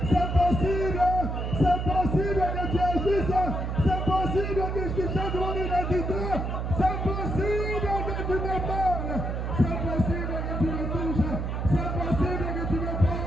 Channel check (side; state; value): right; noise; hum, 2 dB below the sound